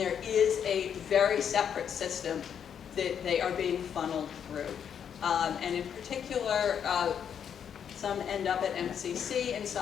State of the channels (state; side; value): quieter; right; 8.1 dB